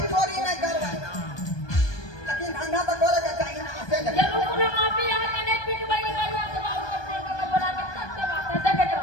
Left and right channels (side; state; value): right; late; 1.2 ms